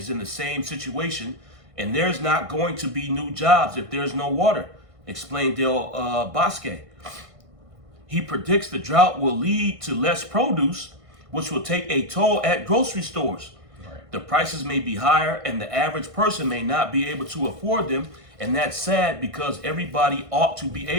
in the same situation, and there's not going to be new jobs if there's no water, explained Del Bosque. He predicts the drought will lead to less produce, which will take a toll at grocery stores. Right. The prices may be higher, and the average person may not be able to afford them, and that's sad because everybody ought to be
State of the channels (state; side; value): late; left; 1.6 ms